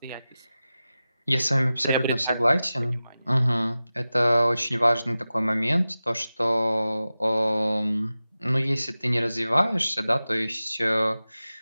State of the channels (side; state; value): both; inverted; correlation -0.95